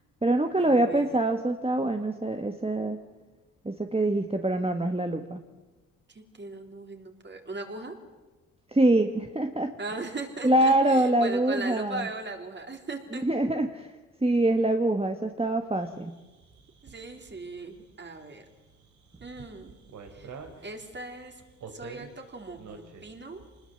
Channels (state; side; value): normal; both; correlation 0.62